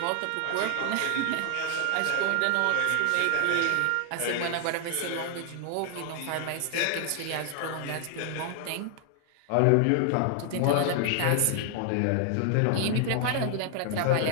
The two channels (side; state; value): both; different; correlation 0.00